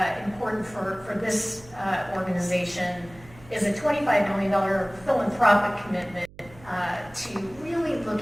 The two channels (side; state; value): right; noise; hum, 22 dB below the sound